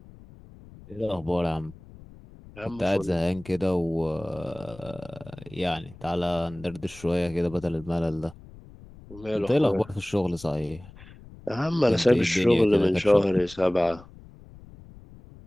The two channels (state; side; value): noise; left; rumble, 20 dB below the sound